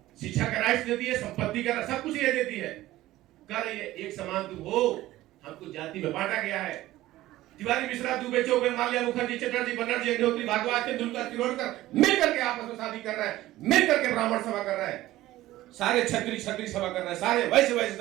शिक्षा का राइट्स देती है, संपत्ति का सब कुछ ये देती है। कर ये एक समान तुम हो, हमको जाति में बांटा गया है। तिवारी, मिश्रा, दुबे, चौबे, माल्या, मुखर्जी, चटर्जी, बनर्जी, अग्निहोत्री, भारद्वाज, तेंदुलकर, तिरोडकर मिल करके आपस में शादी कर रहे हैं, मिल करके ब्राह्मण सभा कर रहे हैं, सारे छत्री सभा कर रहे हैं, सारे वैश्य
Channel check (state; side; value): quieter; left; 16.0 dB